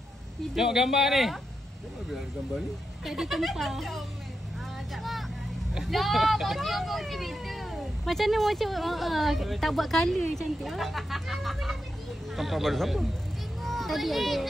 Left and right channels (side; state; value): both; normal; correlation 0.87